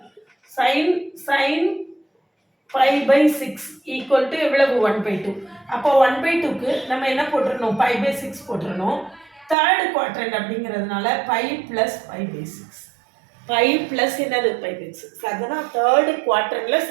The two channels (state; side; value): drops out; left; at 9.6 s